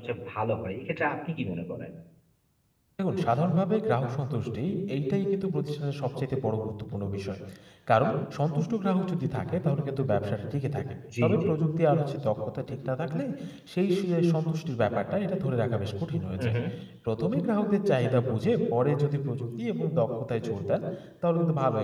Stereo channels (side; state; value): both; identical; correlation 1.00